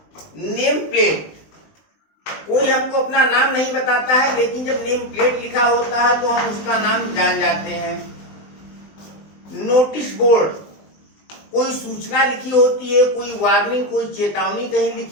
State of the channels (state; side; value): late; right; 20 ms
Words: नेम प्लेट। कोई हमको अपना नाम नहीं बताता है, लेकिन जब नेम प्लेट लिखा होता है तो हम उसका नाम जान जाते हैं। नोटिस बोर्ड, कोई सूचना लिखी होती है, कोई वार्निंग, कोई चेतावनी कहीं